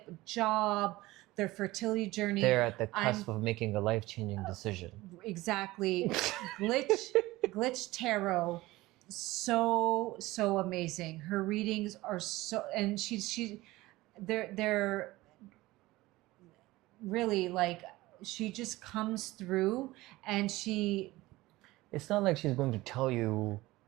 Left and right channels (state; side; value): quieter; left; 18.9 dB